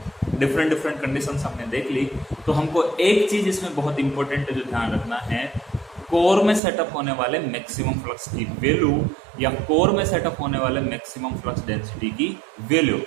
डिफरेंट डिफरेंट कंडीशंस हमने देख ली। तो हमको एक चीज इसमें बहुत इंपॉर्टेंट जो ध्यान रखना है, कोर में सेटअप होने वाले मैक्सिमम फ्लक्स की वैल्यू या कोर में सेटअप होने वाले मैक्सिमम फ्लक्स डेंसिटी की वैल्यू,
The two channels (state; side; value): drops out; left; at 6.6 s